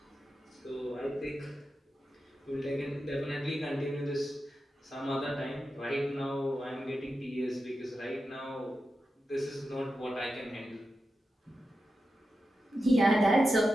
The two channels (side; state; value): both; normal; correlation 0.90